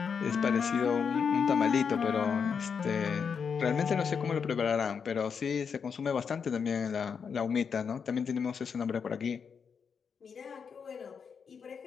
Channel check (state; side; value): quieter; right; 6.4 dB